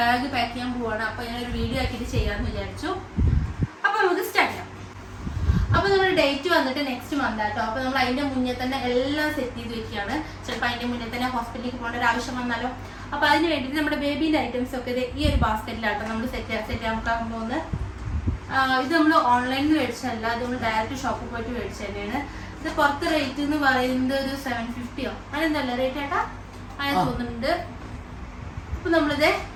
പാക്ക് ചെയ്യാൻ പോവാണ്. അപ്പോൾ ഞാനൊരു വീഡിയോ ആക്കിയിട്ട് ചെയ്യാമെന്ന് വിചാരിച്ചു. അപ്പോൾ നമുക്ക് സ്റ്റാർട്ട് ചെയ്യാം. അപ്പോൾ നമ്മുടെ ഡേറ്റ് വന്നിട്ട് നെക്സ്റ്റ് മന്ത് ആട്ടോ. അപ്പോൾ നമ്മൾ അതിൻ്റെ മുന്നേ തന്നെ എല്ലാം സെറ്റ് ചെയ്ത് വെക്കുകയാണ്. ചിലപ്പോൾ അതിൻ്റെ മുന്നേ തന്നെ ഹോസ്പിറ്റലിലേക്ക് പോകേണ്ട ഒരു ആവശ്യം വന്നാലോ. അപ്പോൾ അതിന് വേണ്ടിയിട്ട് നമ്മുടെ ബേബീൻ്റെ ഐറ്റംസ് ഒക്കെ ഈ ഒരു ബാസ്ക്കറ്റിലാട്ടോ നമ്മൾ സെറ്റ് ചെയ്യാൻ പോകുന്നത്. ഇത് നമ്മൾ ഓൺലൈനിൽ മേടിച്ചല്ല, ഇത് നമ്മൾ ഡയറക്റ്റ് ഷോപ്പിൽ പോയിട്ട് മേടിച്ചു തന്നെയാണ്. ഇത് പുറത്ത് റേറ്റ് എന്ന് പറയുന്നത് ഒരു 750 അങ്ങനെന്തല്ല റേറ്റ് ആട്ടാ അങ്ങനെ തോന്നുന്നുണ്ട്. അപ്പൊ നമ്മളിത്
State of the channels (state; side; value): identical; both; correlation 1.00